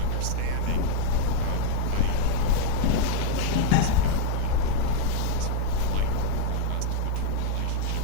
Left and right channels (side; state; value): both; different; correlation 0.00